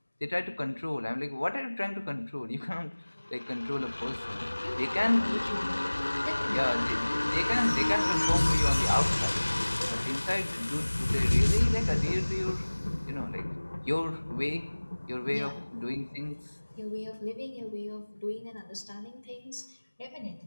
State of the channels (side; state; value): both; inverted; correlation -1.00